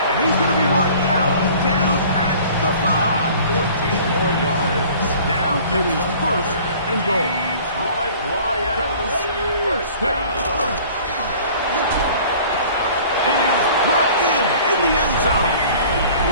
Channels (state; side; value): inverted; both; correlation -0.48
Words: he's gonna be marked out down at the 5. 14 more yards. Now it is 1st and goal. Detroit Lions first down. It is brought in the end zone.